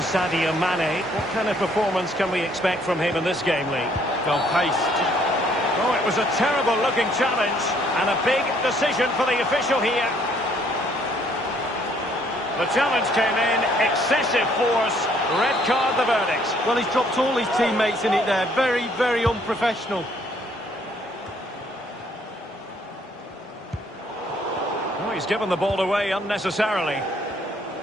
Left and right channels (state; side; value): normal; both; correlation 0.65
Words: Sadio Mane. What kind of performance can we expect from him in this game, Lee? Well paced. Oh, it was a terrible-looking challenge and a big decision for the official here. The challenge came in, excessive force, red card the verdict. Well, he's dropped all his teammates in it there. Very, very unprofessional. Oh, he's given the ball away unnecessarily.